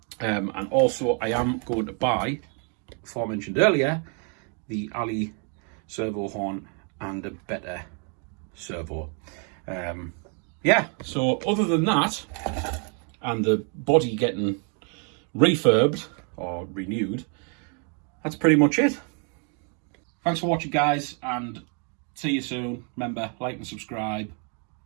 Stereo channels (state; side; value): quieter; left; 39.4 dB